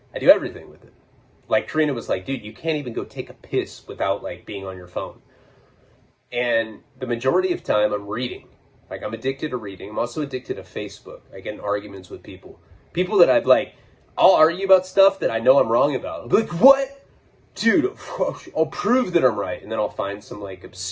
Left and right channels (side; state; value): both; identical; correlation 1.00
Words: I do everything with it. Like Karina was like, dude, you can't even go take a piss without like being on your phone. And the majority of time I'm reading. Like I'm addicted to reading. I'm also addicted to Facebook. I get in arguments with people. People that I'd like, I'll argue about stuff that I know I'm wrong about. I'll be like, what? Dude, I'll prove that I'm right. And then I'll find some like